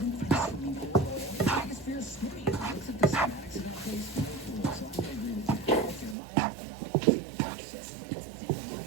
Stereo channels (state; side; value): drops out; left; at 6.2 s